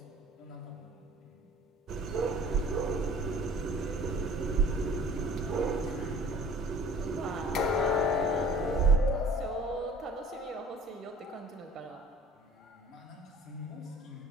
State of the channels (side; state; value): both; normal; correlation 0.48